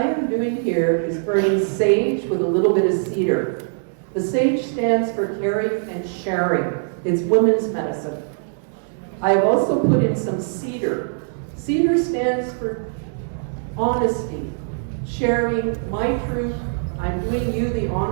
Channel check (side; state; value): left; silent; digital silence